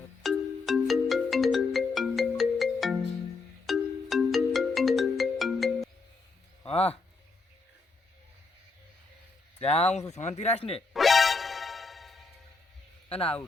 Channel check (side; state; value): right; quieter; 4.0 dB